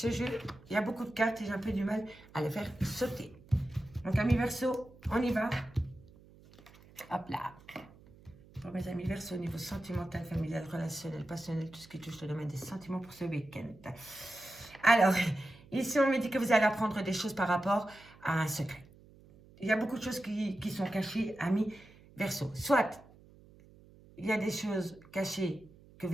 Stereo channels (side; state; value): right; noise; hum, 24 dB below the sound